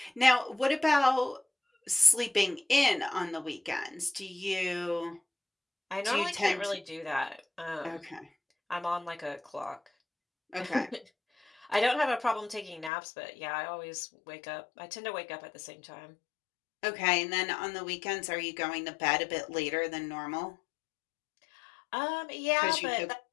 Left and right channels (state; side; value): drops out; right; at 12.9 s